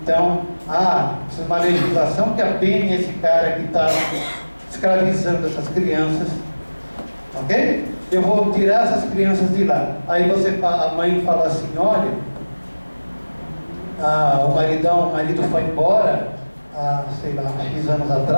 Então, precisa de uma legislação que apene esse cara que está escravizando essas crianças. Ok? Eu vou tirar essas crianças de lá. Aí a mãe fala assim, olha, o marido foi embora, sei lá, X anos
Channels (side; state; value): both; inverted; correlation -1.00